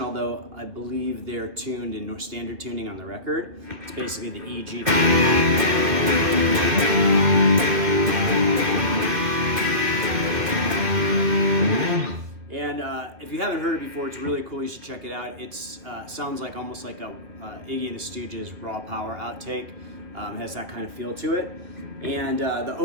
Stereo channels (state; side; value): late; left; 2.6 ms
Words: although I believe they're tuned in standard tuning on the record. It's basically the E, G. And if you haven't heard it before, it's really cool. You should check it out. It sounds like almost like a Iggy and the Stooges raw power outtake. Has that kind of feel to it. And the